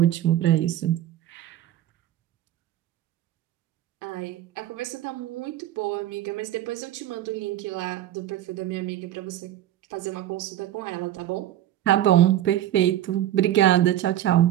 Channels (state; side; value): quieter; left; 12.7 dB